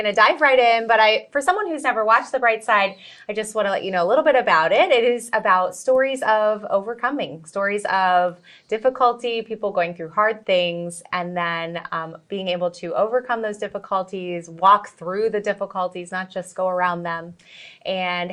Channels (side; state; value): both; identical; correlation 1.00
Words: to dive right in, but for someone who's never watched The Bright Side, I just want to let you know a little bit about it. It is about stories of overcoming, stories of difficulty, people going through hard things, and then being able to overcome those difficulties, walk through the difficulties, not just go around them, and